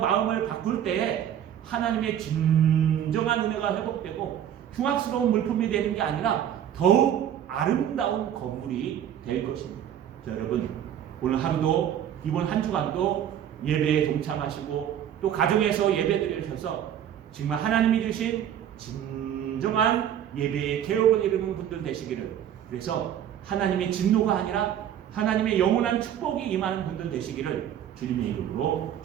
바꿀 때 하나님의 진정한 은혜가 회복되고 흉악스러운 물품이 되는 게 아니라 더욱 아름다운 건물이 될 것입니다. 자, 여러분 오늘 하루도 이번 한 주간도 예배에 동참하시고 또 가정에서 예배 드리셔서 정말 하나님이 주신 진정한 예배의 개혁을 이루는 분들 되시기를, 그래서 하나님의 진노가 아니라 하나님의 영원한 축복이 임하는 분들 되시기를 주님의 이름으로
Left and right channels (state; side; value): quieter; left; 10.1 dB